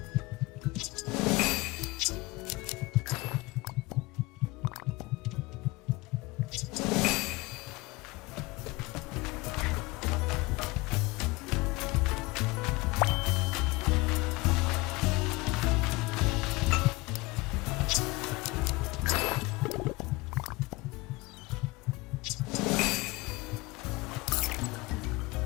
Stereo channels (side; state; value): right; quieter; 22.8 dB